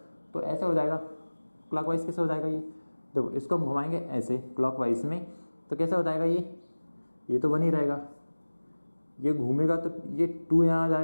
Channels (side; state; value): both; inverted; correlation -1.00